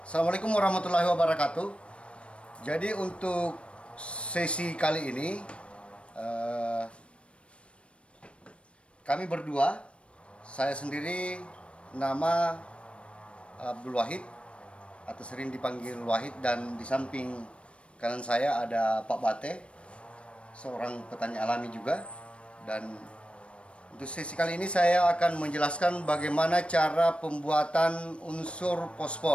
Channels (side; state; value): right; late; 0.060 ms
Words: Assalamualaikum warahmatullahi wabarakatuh. Jadi untuk sesi kali ini kami berdua, saya sendiri nama Abdul Wahid atau sering dipanggil Wahid, dan di samping kanan saya ada Pak Bate, seorang petani alami juga. Dan untuk sesi kali ini saya akan menjelaskan bagaimana cara pembuatan unsur